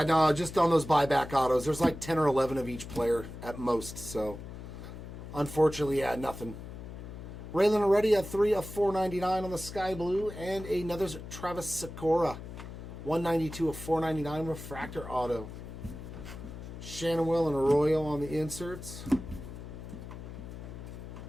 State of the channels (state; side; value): noise; left; hum, 11 dB below the sound